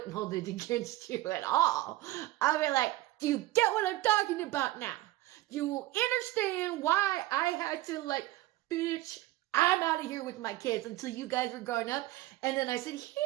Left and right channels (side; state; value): left; quieter; 17.1 dB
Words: hold it against you at all. I'd be like, do you get what I'm talking about now? Do you understand why I had to bitch, I'm out of here with my kids until you guys were growing up? And then I said,